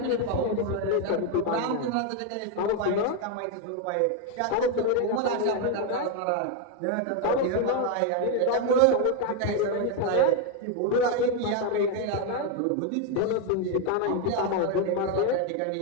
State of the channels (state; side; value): different; both; correlation 0.01